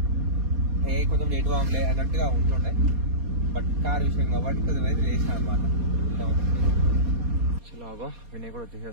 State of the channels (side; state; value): left; late; 4.2 ms